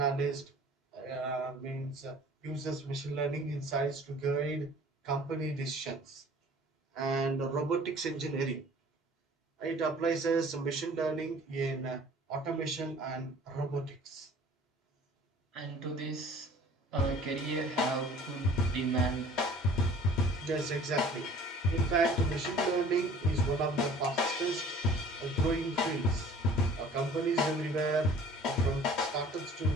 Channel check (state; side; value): normal; both; correlation 0.48